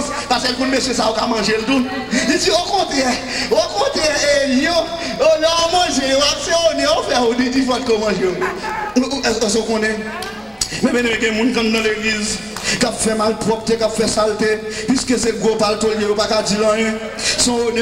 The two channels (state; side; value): identical; both; correlation 1.00